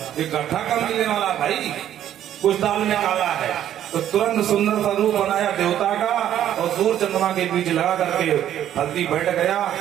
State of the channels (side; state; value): left; quieter; 11.1 dB